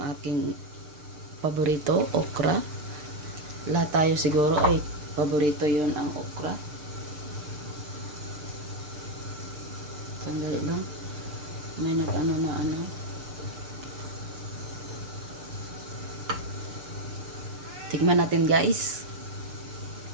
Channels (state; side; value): late; left; 6.7 ms